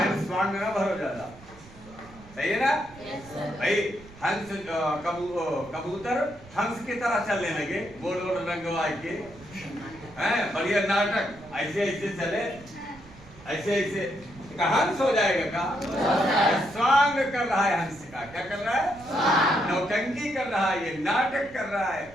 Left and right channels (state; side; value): noise; right; rumble, 21 dB below the sound